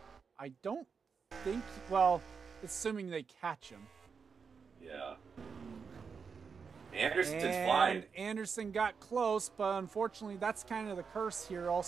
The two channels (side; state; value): left; quieter; 5.8 dB